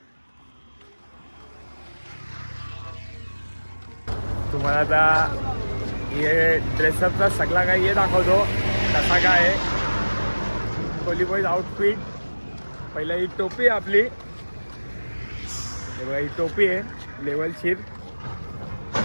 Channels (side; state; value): both; inverted; correlation -1.00